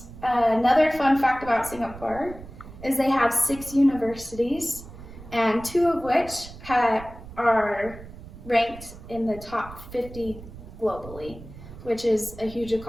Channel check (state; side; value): noise; right; rumble, 15 dB below the sound